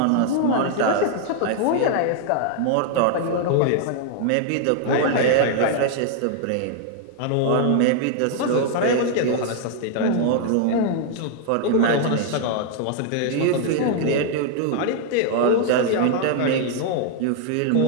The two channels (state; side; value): different; both; correlation 0.00